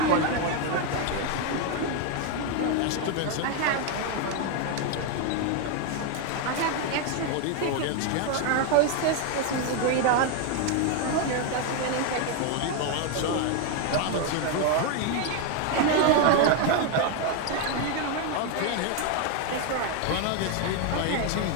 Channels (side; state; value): both; different; correlation 0.01